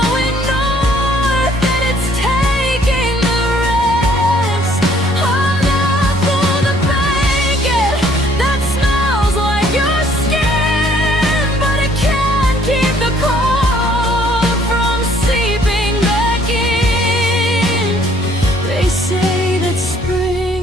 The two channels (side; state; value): both; normal; correlation 0.62